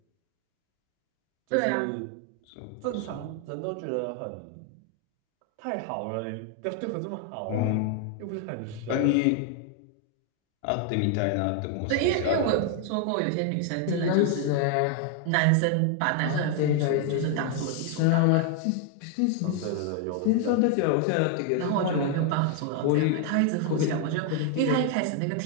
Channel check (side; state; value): both; different; correlation 0.00